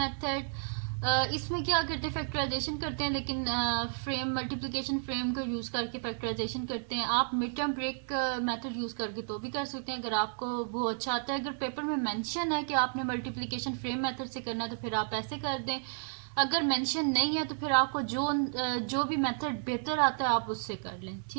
इसमें क्या करते हैं, फैक्टराइजेशन करते हैं लेकिन फ्रेम मल्टीप्लिकेशन फ्रेम का यूज़ करके फैक्टराइजेशन करते हैं। आप mid term break method use करके तो भी कर सकते हैं अगर आपको वो अच्छा आता है। अगर पेपर में मेंशन है कि आपने मल्टीप्लिकेशन फ्रेम मेथड से करना है तो फिर आप ऐसे कर दें। अगर मेंशन नहीं है तो फिर आपको जो भी मेथड बेहतर आता है आप उससे कर लें,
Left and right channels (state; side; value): silent; left; digital silence